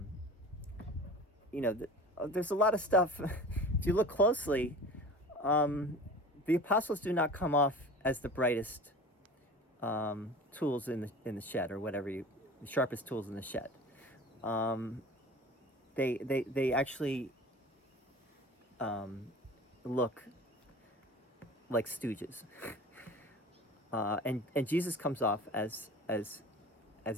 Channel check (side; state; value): both; normal; correlation 0.38